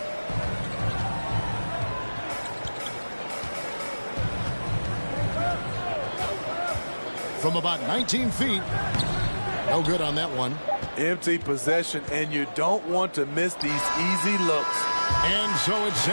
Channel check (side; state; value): both; inverted; correlation -1.00